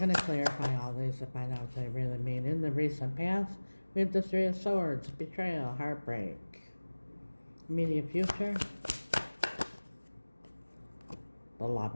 to clarify all these to find out what they really mean. In the recent past, we have the Three of Swords, betrayal, heartbreak. Immediate future, the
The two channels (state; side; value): inverted; both; correlation -1.00